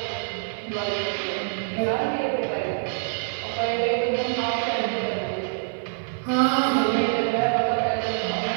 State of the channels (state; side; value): silent; left; digital silence